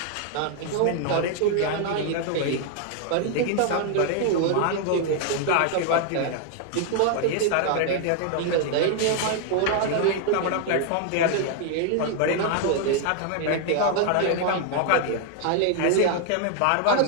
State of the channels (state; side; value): different; both; correlation 0.00